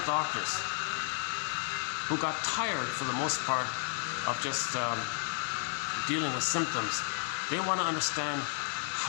doctors who got tired, for the most part, of just dealing with symptoms. They want to understand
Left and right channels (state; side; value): silent; right; 56 dB below the other